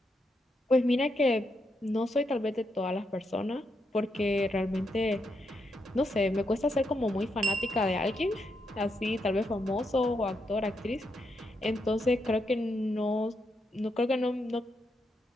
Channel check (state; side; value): normal; both; correlation 0.81